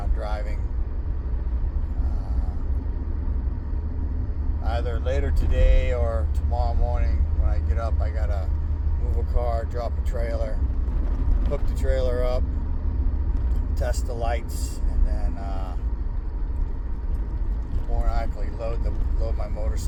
driving. Either later today or tomorrow morning when I get up, I gotta move a car, drop a trailer, hook the trailer up, test the lights, and then more than likely load my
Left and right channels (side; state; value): both; identical; correlation 1.00